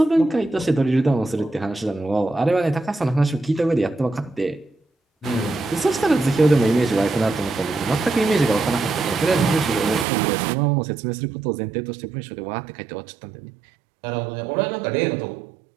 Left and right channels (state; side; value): drops out; left; at 10.1 s